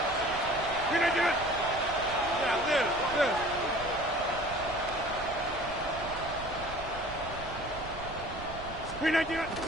Can I do it? Yeah, this. Can I do it?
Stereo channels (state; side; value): noise; right; rumble, 12 dB below the sound